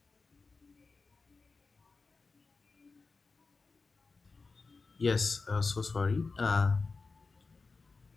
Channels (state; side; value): quieter; right; 4.2 dB